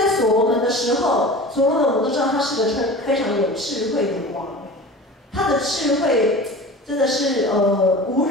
所罗门的时候，所罗门我们都知道他是个非常有智慧的王，他的智慧真的是无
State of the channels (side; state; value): both; normal; correlation 0.36